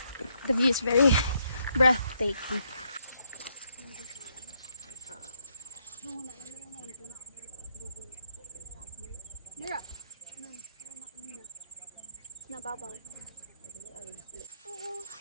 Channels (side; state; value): both; inverted; correlation -0.75